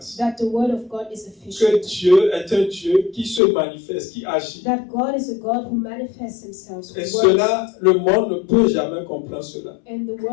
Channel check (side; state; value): right; drops out; at 3.4 s